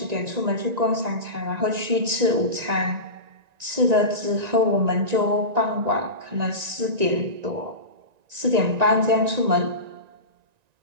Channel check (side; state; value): left; late; 1.9 ms